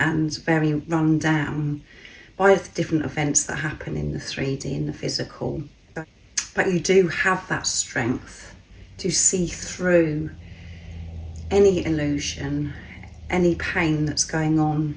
very run down by the different events that happen in the 3D, in the physical. But you do have that strength to see through any illusion, any pain that's going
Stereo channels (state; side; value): identical; both; correlation 1.00